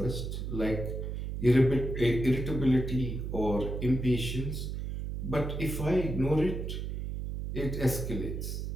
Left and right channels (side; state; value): right; noise; hum, 4 dB below the sound